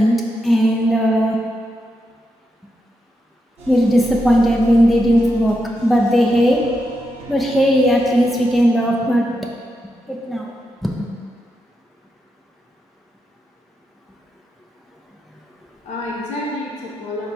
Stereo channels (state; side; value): normal; both; correlation 0.85